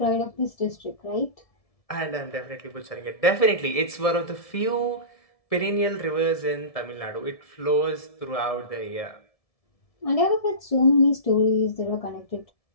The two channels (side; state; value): right; late; 1.7 ms